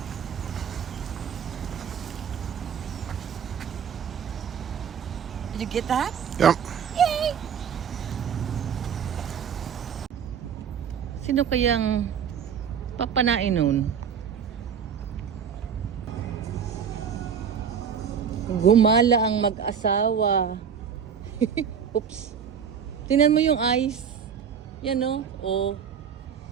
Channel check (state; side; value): quieter; left; 7.5 dB